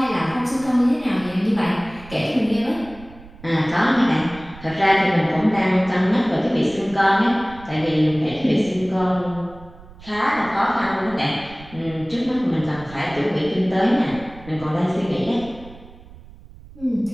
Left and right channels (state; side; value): noise; right; rumble, 19 dB below the sound